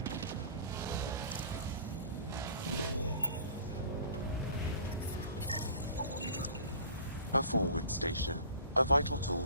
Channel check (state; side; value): inverted; both; correlation -0.44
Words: A forward station, a vital